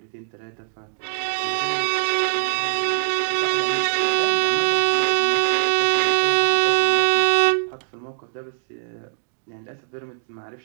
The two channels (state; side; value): silent; left; digital silence